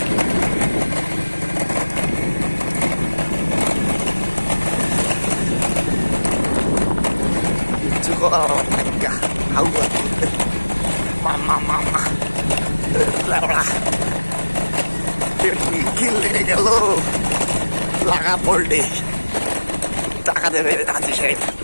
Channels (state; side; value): inverted; both; correlation -1.00